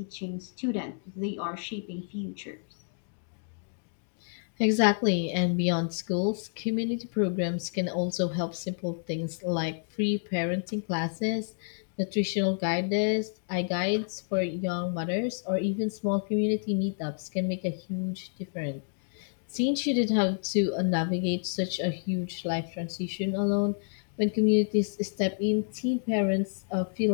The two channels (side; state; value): right; silent; digital silence